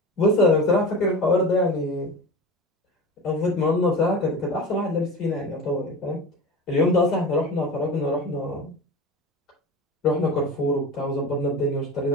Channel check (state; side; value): normal; both; correlation 0.30